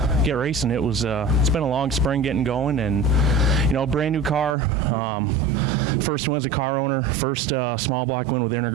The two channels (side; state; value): left; drops out; at 4.5 s